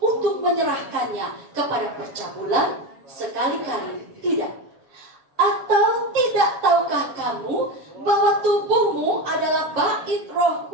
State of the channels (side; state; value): left; late; 7.2 ms